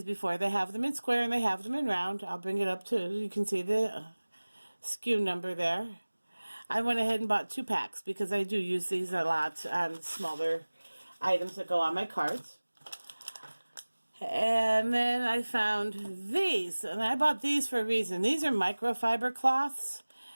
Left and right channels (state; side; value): inverted; both; correlation -1.00